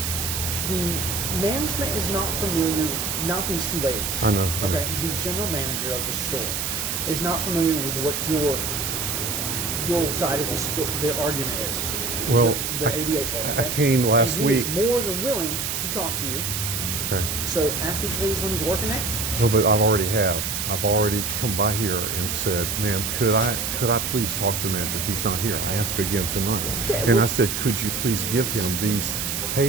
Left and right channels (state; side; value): noise; right; hiss, 2 dB below the sound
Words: The management is not familiar. Not these two ladies. I know. I know. Okay. The general manager of the store is not familiar with what your side of the store, the argument is. Well, the 88 part. I okay? came last and he week. is more than willing to talk to you. Okay. So ask these ladies when he's working next. Well, but I've already have. I've already come by here and said, "Ma'am, could I please talk to the manager? He's not here." I asked again tonight, Yeah, and well- I said, "Could you please give him these